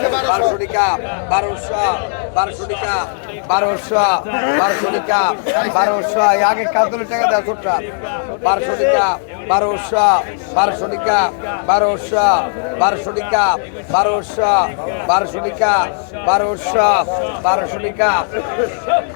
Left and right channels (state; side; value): silent; right; digital silence